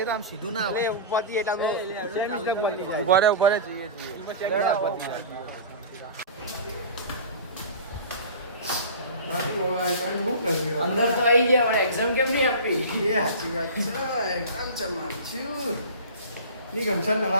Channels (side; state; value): both; inverted; correlation -0.34